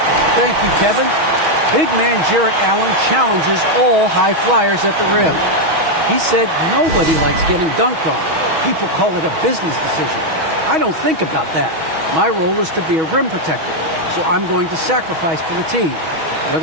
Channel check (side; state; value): left; late; 6.3 ms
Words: Thank you, Kevin. Big man Jarrett Allen challenges all high flyers at the rim. He said nobody likes getting dunked on. People call it a business decision. I don't think about that. My role is to be a rim protector, so I'm going to sacrifice for the team.